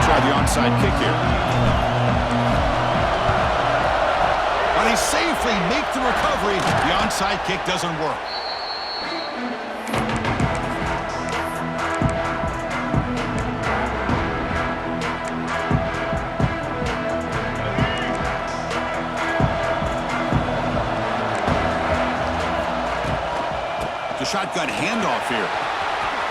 to try the onside kick here. But he safely makes the recovery. The onside kick doesn't work. The shotgun handoff here.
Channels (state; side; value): identical; both; correlation 1.00